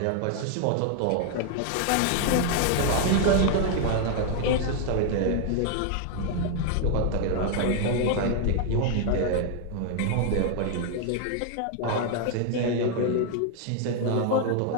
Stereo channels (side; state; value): both; different; correlation 0.00